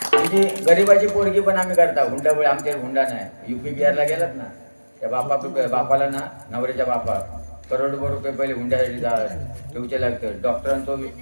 आमची गरीबाची पोरगी पण आम्ही करता हुंडामुळे आमच्या हुंडा नाही. UP बिहारला गेलात ना त्या बापाला ना नवऱ्याच्या बापा करोडभर रुपये पहिले हुंड्यासाठी ठेवचे लागतं. डॉक्टरांचा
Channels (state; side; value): inverted; both; correlation -1.00